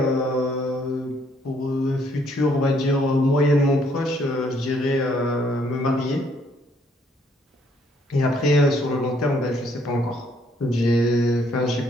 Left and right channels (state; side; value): normal; both; correlation 0.67